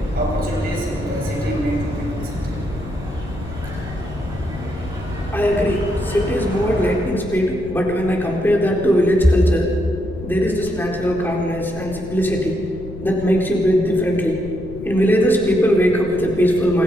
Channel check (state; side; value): noise; left; rumble, 12 dB below the sound